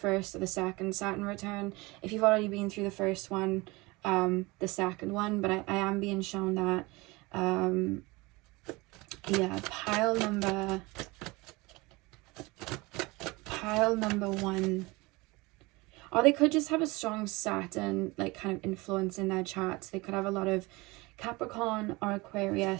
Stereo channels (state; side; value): quieter; left; 23.5 dB